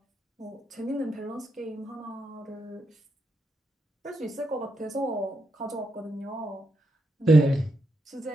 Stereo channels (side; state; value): both; normal; correlation 0.83